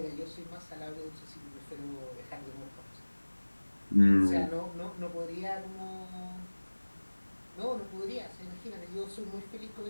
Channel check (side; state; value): both; inverted; correlation -1.00